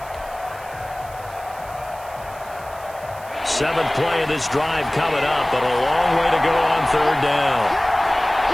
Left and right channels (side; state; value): right; noise; hiss, 21 dB below the sound